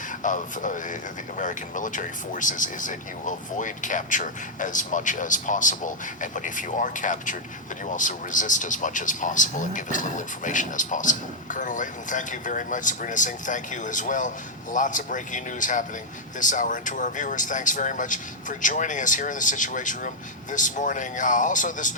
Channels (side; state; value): both; normal; correlation -0.03